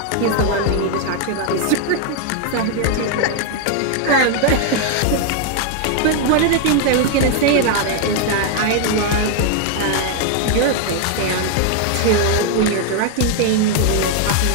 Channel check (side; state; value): both; different; correlation 0.00